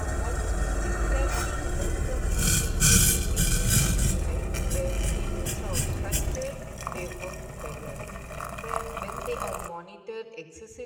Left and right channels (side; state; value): both; identical; correlation 1.00